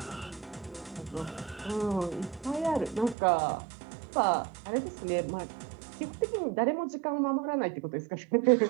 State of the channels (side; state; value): left; drops out; at 3.2 s